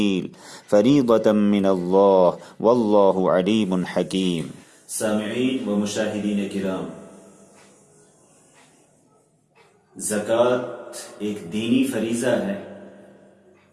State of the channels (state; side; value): identical; both; correlation 1.00